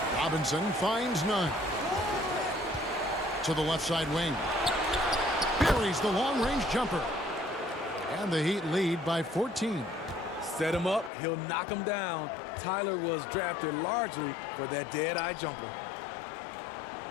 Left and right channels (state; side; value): drops out; right; at 11.1 s